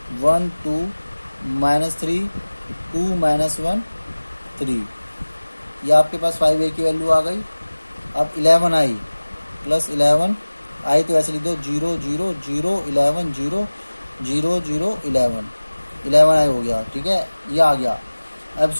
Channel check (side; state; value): both; inverted; correlation -1.00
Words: 1 2 -3 2 -1 3, ये आपके पास 5a की वैल्यू आ गई। अब 11i + 11 आई तो ऐसे लिख दो 0 0 0 11 0 0 0 11 11i हो गया, ठीक है। ये आ गया। अब